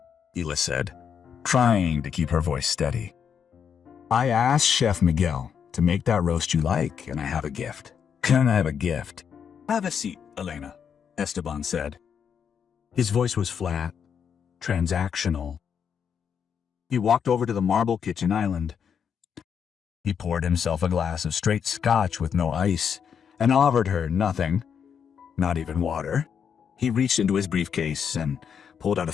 Hila said, trying to keep her voice steady. I asked Chef Miguel to make that roast you like, and I have a gift. Can I have a gift? Have a seat, Elena, Esteban said. His voice was flat, transactional. He walked over to the marble kitchen island. He poured himself a glass of straight scotch with no ice and offered her nothing, not even water. He reached into his briefcase and pulled out a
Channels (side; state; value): right; quieter; 7.4 dB